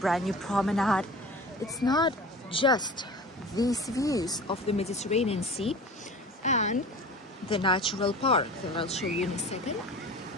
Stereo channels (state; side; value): normal; both; correlation 0.38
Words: new promenade, it's not just these views of the Mediterranean Sea and the natural park that I'll show you in a second.